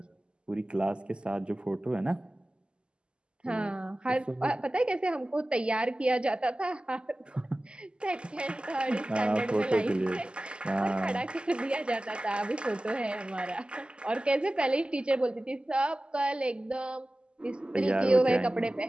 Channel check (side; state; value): left; late; 0.051 ms